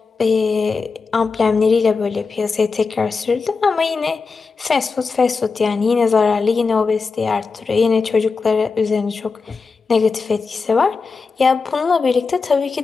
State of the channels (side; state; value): right; quieter; 4.6 dB